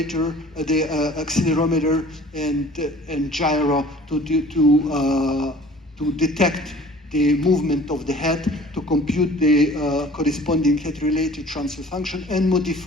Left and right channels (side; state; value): both; normal; correlation 0.48